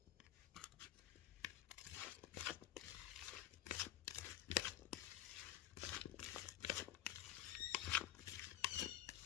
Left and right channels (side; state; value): right; quieter; 13.0 dB